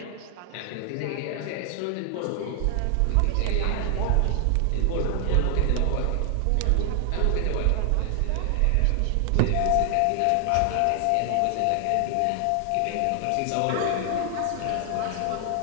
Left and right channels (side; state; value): both; different; correlation 0.00